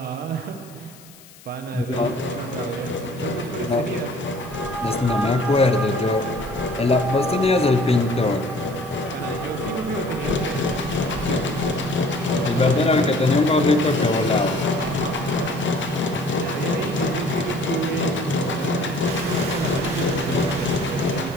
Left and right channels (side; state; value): left; noise; hiss, 23 dB below the sound